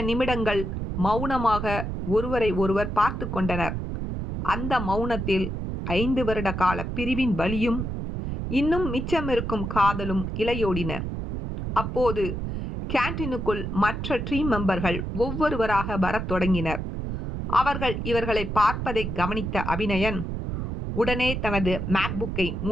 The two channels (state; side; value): noise; right; rumble, 4 dB below the sound